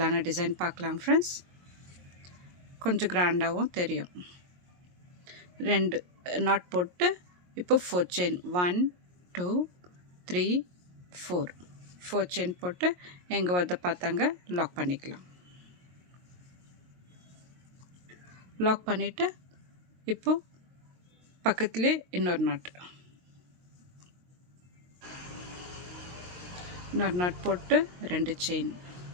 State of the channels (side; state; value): left; late; 22 ms